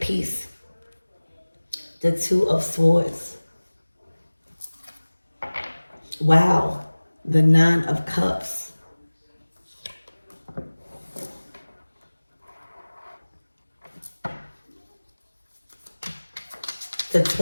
peace. The Two of Swords. Wow. The Nine of Cups. The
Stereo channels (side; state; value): both; inverted; correlation -1.00